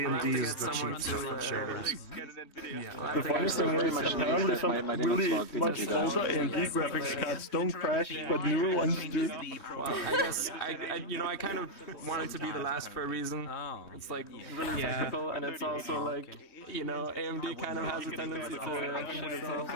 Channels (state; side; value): late; right; 3.2 ms